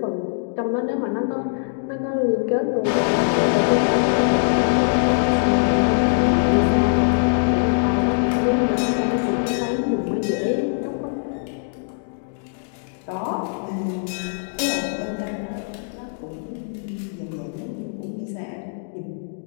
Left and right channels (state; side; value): silent; right; digital silence